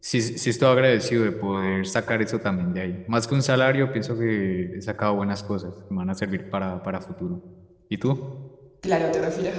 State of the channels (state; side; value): identical; both; correlation 1.00